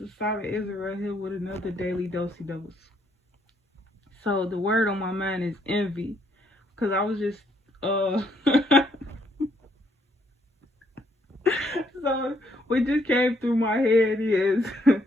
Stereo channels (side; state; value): both; normal; correlation 0.71